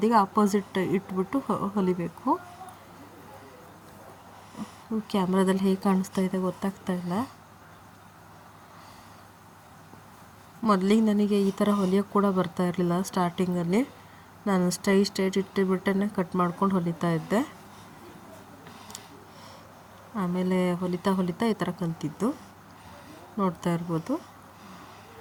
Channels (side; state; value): both; identical; correlation 1.00